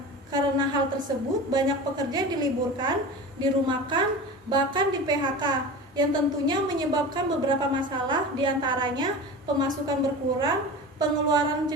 Karena hal tersebut, banyak pekerja diliburkan, dirumahkan, bahkan di PHK, yang tentunya menyebabkan beberapa masalah, diantaranya pemasukan berkurang, pengeluaran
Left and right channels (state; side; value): normal; both; correlation 0.32